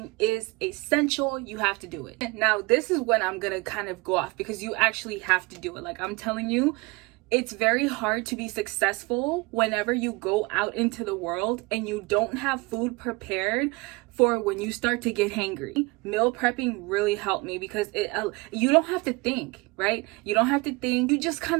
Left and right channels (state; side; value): quieter; left; 25.1 dB